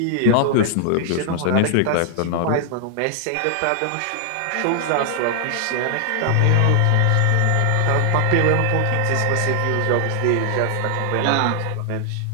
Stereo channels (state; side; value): different; both; correlation 0.00